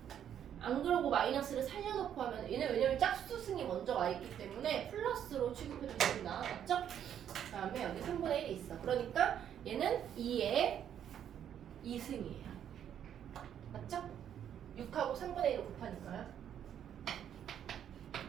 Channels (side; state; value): left; quieter; 9.5 dB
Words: 안 그러고 마이너스를 살려놓고 하면 얘는 왜냐면 짝수승이 먼저 와 있기 때문에 플러스로 취급해주겠습니다. 맞죠? 그 다음에 여기 3분의 1이 있어. 그러니까 얘는 2의 2승이에요. 맞죠? 6하고 3분의 1을 곱하니까요.